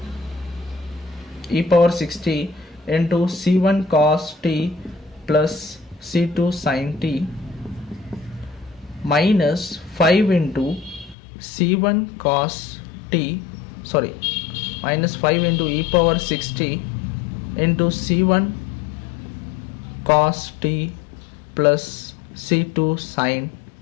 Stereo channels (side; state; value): right; drops out; at 11.2 s